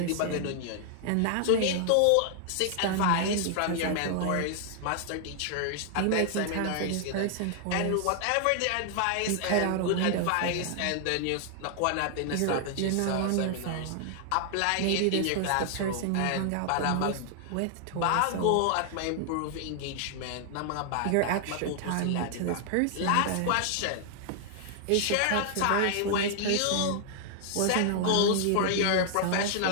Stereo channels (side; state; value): both; different; correlation 0.00